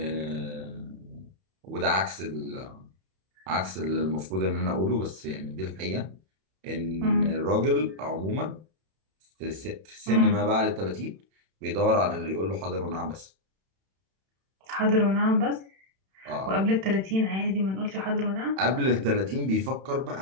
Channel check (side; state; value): left; late; 31 ms